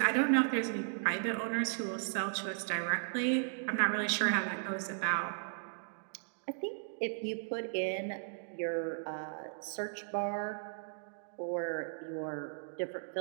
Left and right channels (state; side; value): silent; left; digital silence